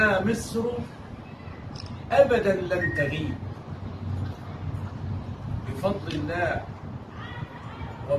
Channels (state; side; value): identical; both; correlation 1.00